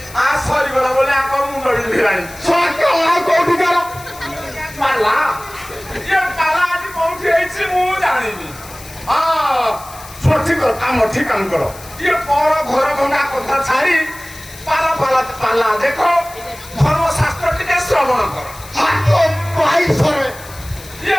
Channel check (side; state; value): left; noise; hiss, 18 dB below the sound